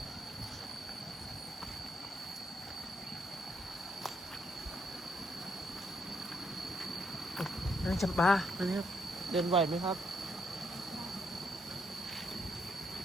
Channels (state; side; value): normal; both; correlation 0.74